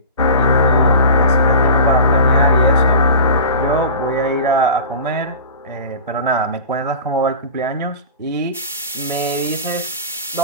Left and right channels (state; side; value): inverted; both; correlation -0.36